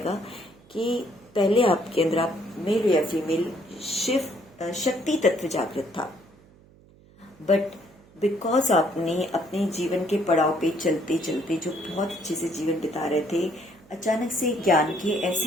कि पहले आपके अंदर, आप मेल हो या फीमेल, शिव शक्ति तत्व जागृत था, बट बिकॉज आपने अपने जीवन के पड़ाव पे चलते चलते जो बहुत अच्छे से जीवन बिता रहे थे, अचानक से ज्ञान के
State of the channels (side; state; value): right; noise; hum, 26 dB below the sound